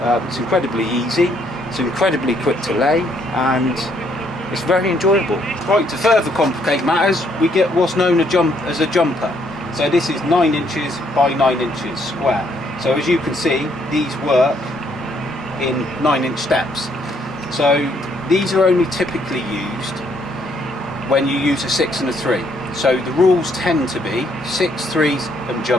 It's incredibly easy, it's incredibly quick to lay, and it's very enjoyable. Right, to further complicate matters, we get what's known as a jumper. So this is 9 inches by 9 inches square. So as you can see, these work in 9-inch steps. So these are only typically used when you use a 6 and a 3. So the rules tend to be 6 3s and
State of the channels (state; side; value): normal; both; correlation 0.69